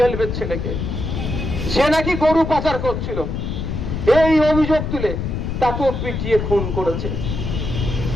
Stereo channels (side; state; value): left; noise; rumble, 3 dB below the sound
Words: এর ছেলেকে সে নাকি গরু পাচার করছিল, এই অভিযোগ তুলে তাকেও পিটিয়ে খুন করেছে